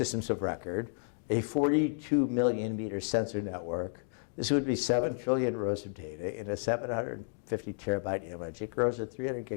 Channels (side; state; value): right; silent; digital silence